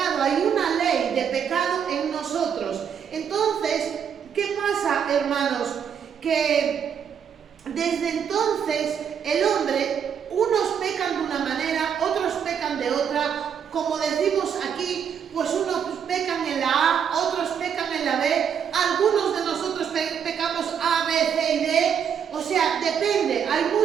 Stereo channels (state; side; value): quieter; left; 7.8 dB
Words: Hay una ley de pecado en nosotros. Entonces, ¿qué pasa, hermanos? Que desde entonces el hombre, unos pecan de una manera, otros pecan de otra. Como decimos aquí, pues unos pecan en la A, otros pecan en la B, algunos de nosotros pecamos A, B, C y D. O sea, depende, hay